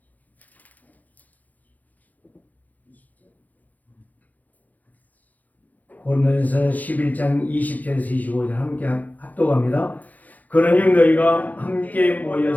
고린도전서 11장 20절에서 25절 함께 합독합니다. 그러니 너희가 함께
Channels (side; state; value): right; late; 0.080 ms